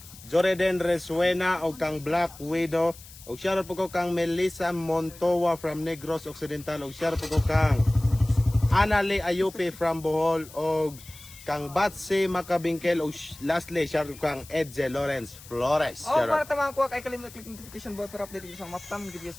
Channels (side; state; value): left; noise; hiss, 19 dB below the sound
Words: Joreden Resuena o kang Black Widow. Og shoutout po ko kang Melissa Montoya from Negros Occidental. Og shoutout po ko kang Anali Ayupi from Bohol. Og kang Batsi Makabingkel. Og lastly, shoutout ko kang Edze Lawrence Flores. Oh, para tamang ko kay kalimut click notification bell para update sa mga upcoming